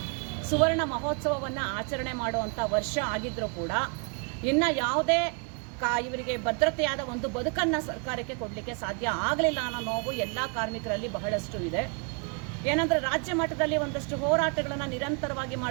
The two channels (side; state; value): left; quieter; 35.6 dB